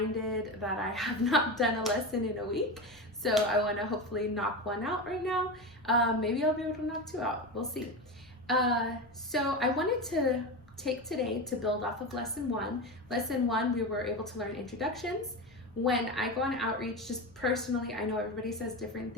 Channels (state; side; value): normal; both; correlation 0.21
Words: that I have not done a lesson in a week, so I want to hopefully knock one out right now. Maybe I'll be able to knock 2 out. We'll see. So I wanted to take today to build off of lesson 1. Lesson 1, we were able to learn introductions. When I go on outreach, just personally, I know everybody says different